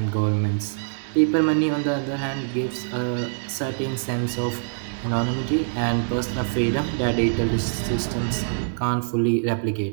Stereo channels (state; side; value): silent; left; digital silence